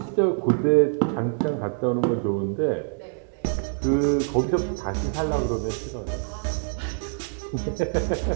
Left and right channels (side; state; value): left; silent; 59 dB below the other